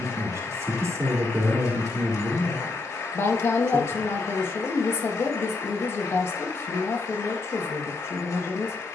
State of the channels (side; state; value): right; quieter; 3.4 dB